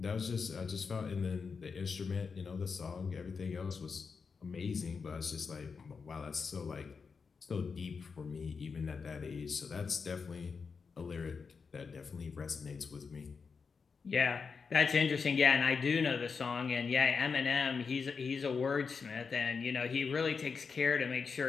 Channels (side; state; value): right; quieter; 5.4 dB